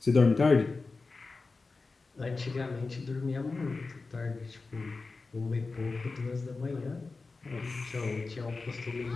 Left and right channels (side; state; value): right; quieter; 3.9 dB